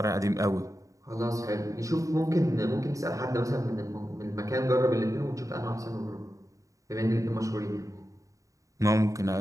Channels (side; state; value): left; late; 0.16 ms